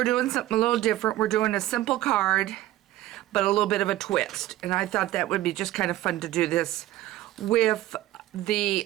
doing something a little different. We're doing a simple card, but a little bit of a twist. And I thought that would be just kind of fun to do this with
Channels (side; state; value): left; quieter; 15.3 dB